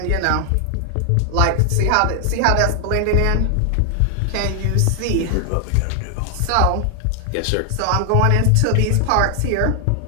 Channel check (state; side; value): different; both; correlation 0.00